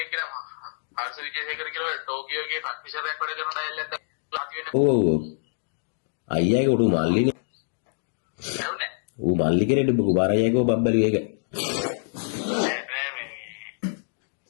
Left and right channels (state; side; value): silent; right; digital silence